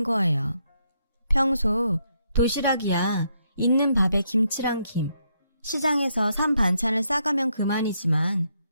거예요. 평소 도시락이야 있는 밥에 김치랑 김, 시장에서 산 반찬을 싸가면 그만이지만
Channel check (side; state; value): both; inverted; correlation -0.76